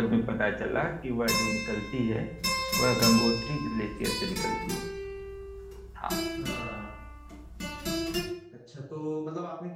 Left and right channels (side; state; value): both; identical; correlation 1.00